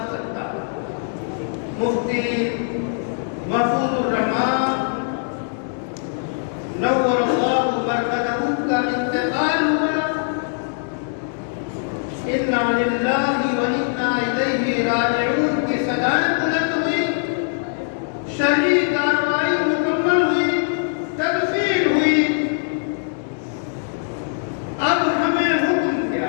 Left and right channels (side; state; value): right; silent; digital silence